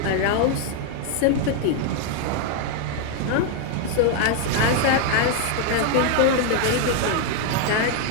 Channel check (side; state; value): both; different; correlation 0.01